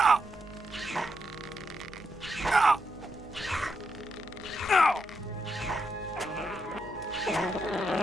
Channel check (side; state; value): right; noise; hum, 20 dB below the sound